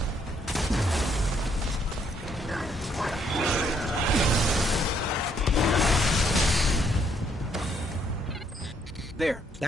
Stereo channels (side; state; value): both; normal; correlation 0.70